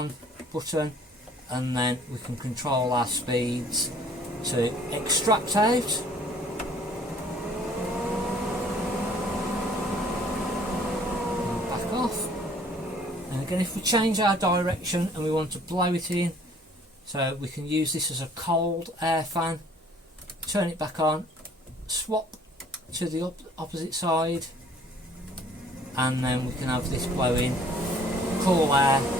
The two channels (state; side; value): normal; both; correlation 0.56